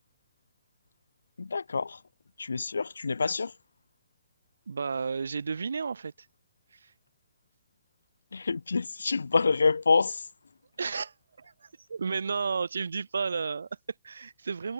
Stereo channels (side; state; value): both; inverted; correlation -0.90